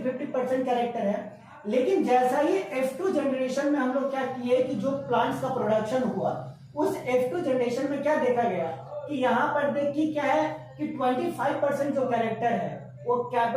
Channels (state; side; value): identical; both; correlation 1.00